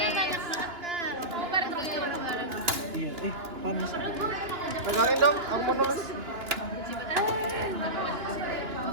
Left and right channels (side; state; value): left; late; 3.0 ms